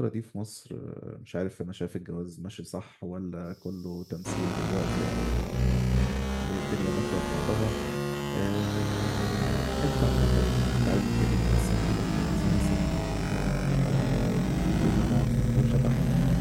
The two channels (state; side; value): identical; both; correlation 1.00